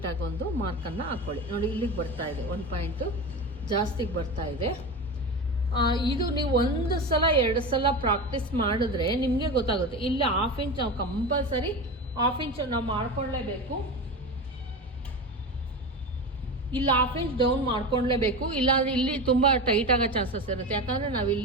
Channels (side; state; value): both; normal; correlation 0.25